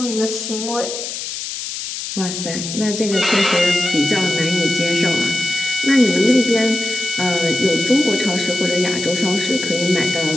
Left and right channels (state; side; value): noise; left; hiss, 6 dB below the sound